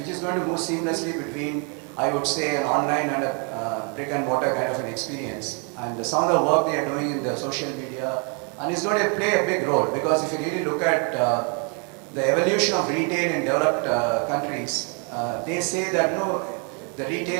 move seamlessly between, I would say, an online and a brick and mortar kind of an experience. And some of the work they are doing in the social media, and it's going to play a big role, because if you really look at the evolution of retail in developed countries, they say that the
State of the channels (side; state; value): left; quieter; 37.1 dB